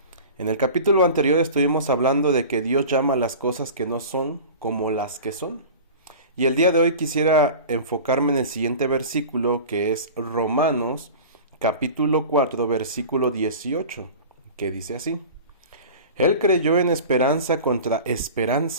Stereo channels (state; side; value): inverted; both; correlation -0.36